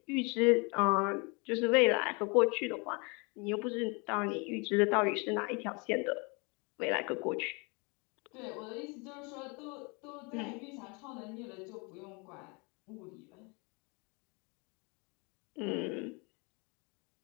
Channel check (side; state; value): right; quieter; 30.5 dB